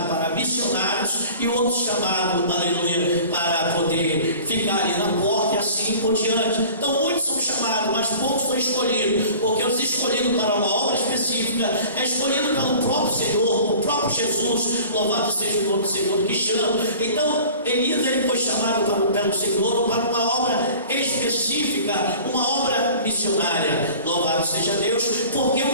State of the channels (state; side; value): inverted; both; correlation -0.44